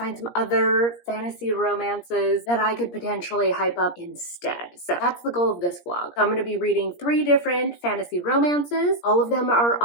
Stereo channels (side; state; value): right; late; 17 ms